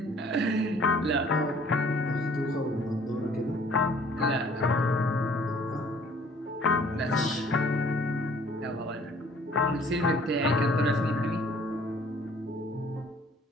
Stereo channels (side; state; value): both; normal; correlation 0.56